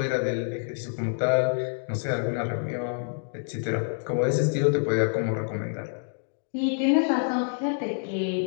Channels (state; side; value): silent; right; digital silence